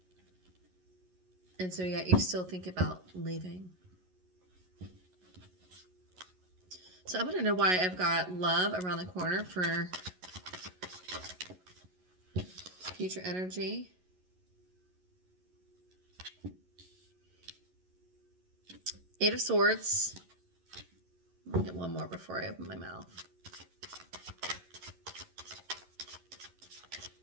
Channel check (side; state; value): left; late; 11 ms